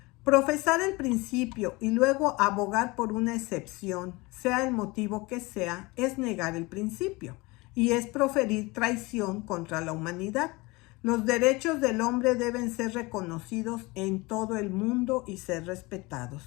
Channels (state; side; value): quieter; right; 23.9 dB